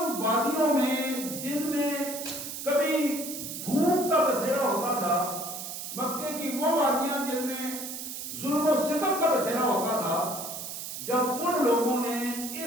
وادیوں میں جن میں کبھی بھوک کا بسیرا ہوتا تھا، مکے کی وہ وادیاں جن میں ظلم و ستم کا بسیرا ہوتا تھا، جب ان لوگوں نے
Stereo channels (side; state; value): right; noise; hiss, 7 dB below the sound